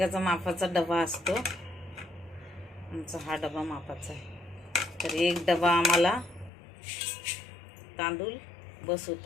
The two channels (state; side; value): drops out; right; at 6.5 s